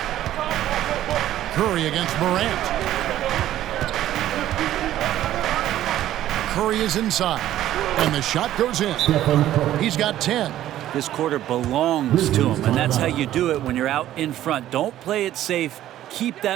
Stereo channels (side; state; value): left; quieter; 13.0 dB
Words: Curry against Morant. Curry is inside, and the shot goes in. He's got 10. This quarter belongs to him, and that's how you do it when you're out in front. Don't play it safe. Keep